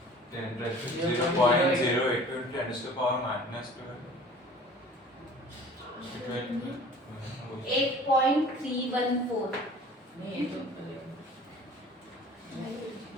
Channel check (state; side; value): normal; both; correlation 0.46